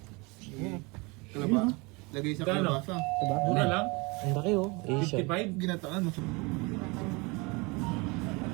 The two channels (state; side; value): quieter; left; 27.0 dB